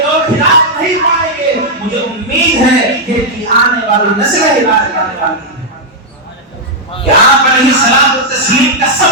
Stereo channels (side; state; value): both; normal; correlation -0.04